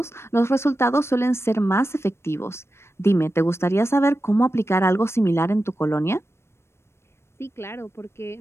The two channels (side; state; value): right; late; 0.12 ms